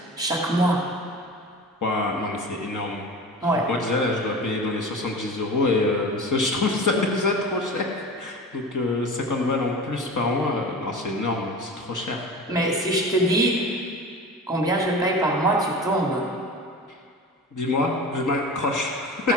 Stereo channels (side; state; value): both; normal; correlation 0.34